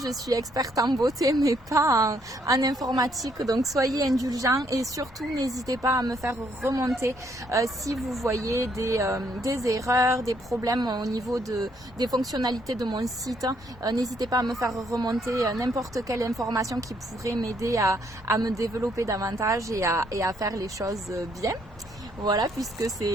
je suis experte en beauté mais pas en informatique, donc soyez indulgents et surtout n'hésitez pas à me faire remonter si vous voyez des erreurs, des problèmes au niveau des fonctionnalités de mon site. N'hésitez pas à me faire remonter n'importe quelle information qui pourrait m'aider à me développer davantage et à faire les choses bien. Voilà, puisque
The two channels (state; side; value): normal; both; correlation 0.70